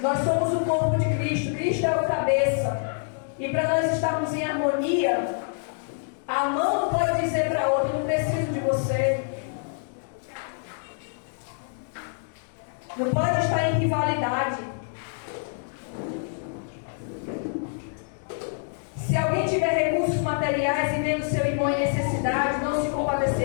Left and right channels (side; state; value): right; silent; digital silence